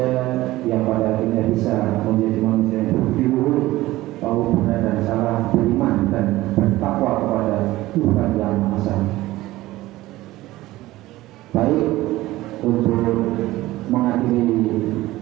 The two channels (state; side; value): quieter; left; 17.3 dB